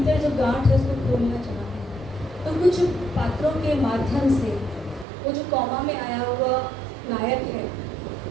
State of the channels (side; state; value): left; drops out; at 5.1 s